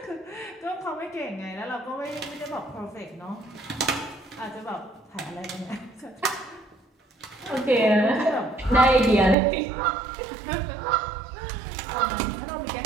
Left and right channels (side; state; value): left; drops out; at 9.3 s